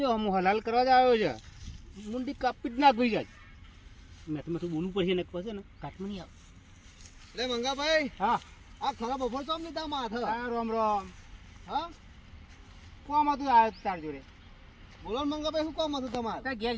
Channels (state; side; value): identical; both; correlation 1.00